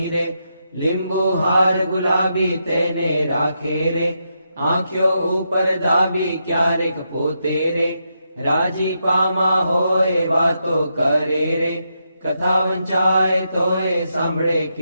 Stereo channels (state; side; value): inverted; both; correlation -0.83